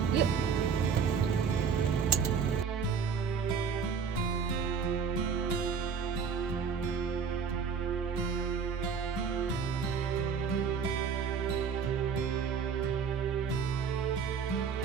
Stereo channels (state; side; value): quieter; left; 6.2 dB